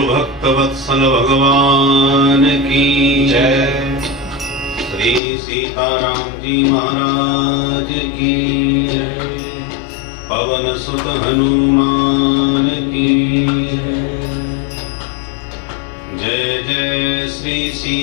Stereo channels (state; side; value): drops out; right; at 5.2 s